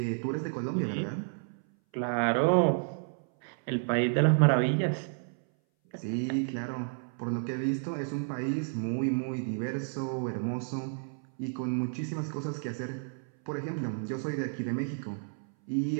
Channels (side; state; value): left; silent; 57 dB below the other